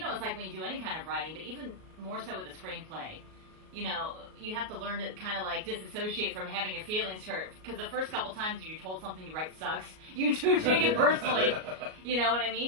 it's like when you do any kind of writing, but even more so with a screenplay. You know, you have to learn to kind of like disassociate from having your feelings hurt. Because the first couple times you're told something you write sucks, you do take it personally. You know what I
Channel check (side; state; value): left; late; 38 ms